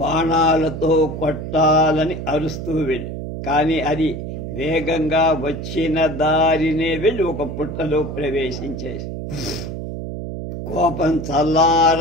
కొట్టాలని అరుస్తూ వెళ్ళి, కానీ అది వేగంగా వచ్చిన దారినే వెళ్ళి ఒక పుట్టలో ప్రవేశించేసి కోపం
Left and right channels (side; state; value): right; noise; hum, 7 dB below the sound